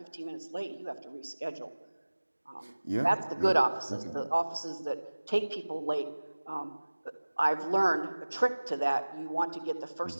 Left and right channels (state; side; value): inverted; both; correlation -1.00